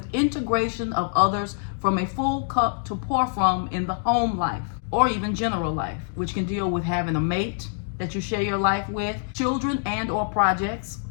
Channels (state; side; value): silent; right; digital silence